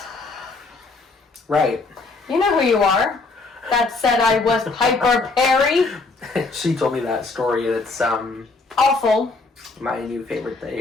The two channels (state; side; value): quieter; right; 3.7 dB